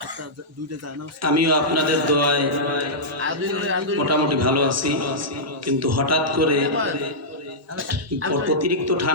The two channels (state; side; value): normal; both; correlation -0.12